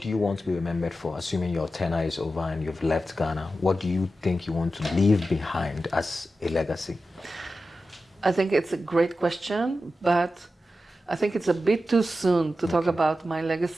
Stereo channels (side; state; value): both; normal; correlation 0.92